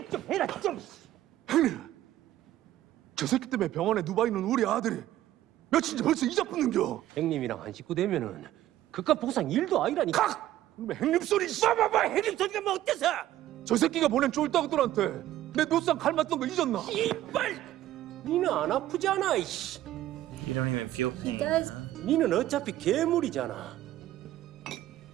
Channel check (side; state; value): left; quieter; 13.7 dB